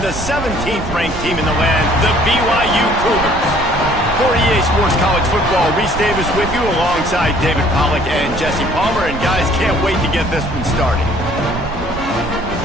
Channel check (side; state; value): right; noise; rumble, 11 dB below the sound